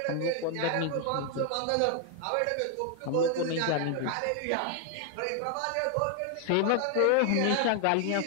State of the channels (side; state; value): both; different; correlation 0.00